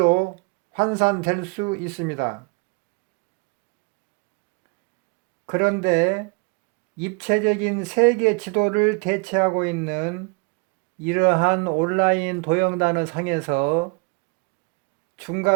환산될 수 있습니다. 그런데 입체적인 세계 지도를 대체하고 있는 이러한 온라인 도형단어 상에서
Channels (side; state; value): left; quieter; 30.4 dB